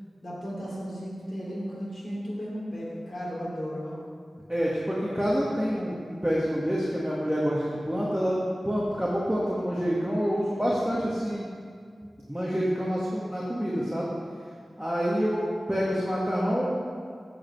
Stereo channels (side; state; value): both; normal; correlation 0.97